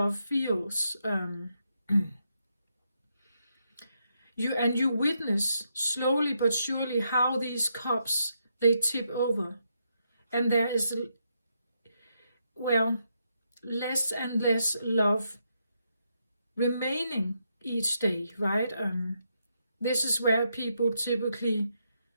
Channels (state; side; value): inverted; both; correlation -0.80